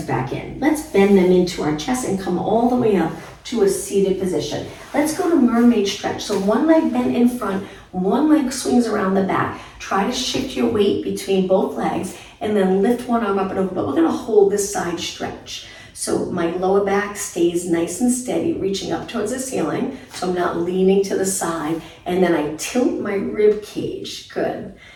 back in. Let's bend them into our chest and come all the way up to a seated position. Let's go to mermaid stretch. So one leg bent in front, one leg swings around the back. Try to shift your weight between both legs and then lift one arm up and over, but we're gonna hold this side stretch. So my lower back stays nice and steady, reaching up towards the ceiling, so I'm not leaning to the side, and then I tilt my rib cage. Good.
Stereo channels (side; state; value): both; identical; correlation 1.00